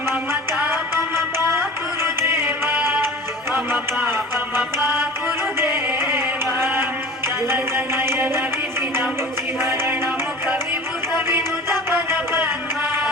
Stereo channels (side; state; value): both; normal; correlation 0.40